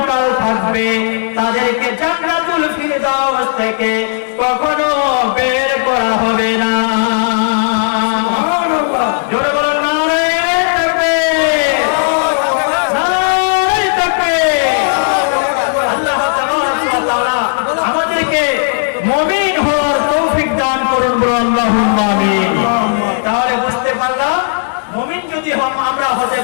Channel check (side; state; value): right; silent; digital silence